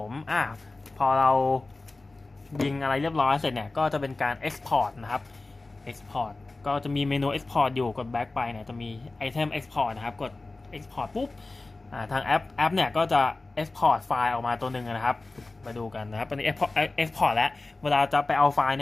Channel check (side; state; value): right; quieter; 3.3 dB